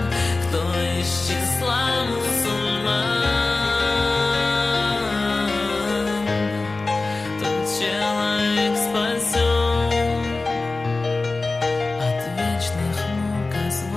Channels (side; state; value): right; quieter; 3.4 dB